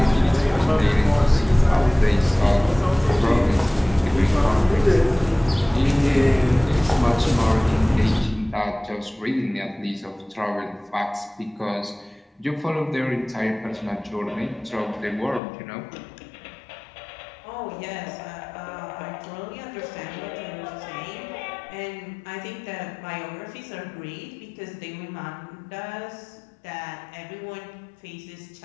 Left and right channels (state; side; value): drops out; right; at 15.4 s